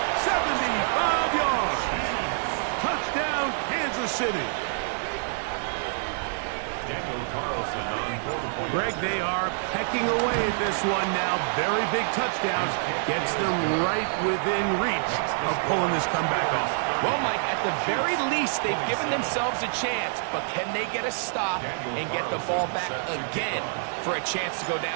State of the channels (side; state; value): left; silent; digital silence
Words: 75 yards. Touchdown, Kansas City. Daniel Carlson on 4 points. Greg, they are pecking away at this one now. Very big touchdowns. Gets them right within reach of pulling this comeback off. Well, Mike, at the very least, they've given themselves a chance, but can they get a stop and get the ball back again for a chance to go